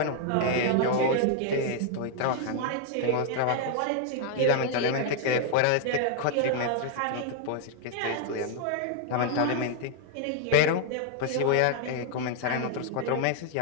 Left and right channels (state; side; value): different; both; correlation 0.00